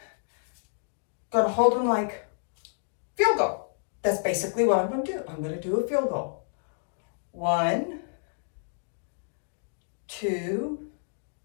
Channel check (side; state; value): right; silent; digital silence